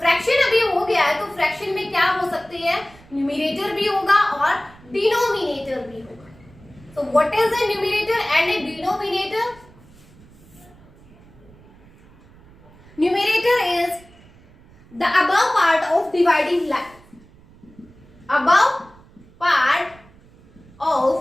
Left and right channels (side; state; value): right; noise; rumble, 25 dB below the sound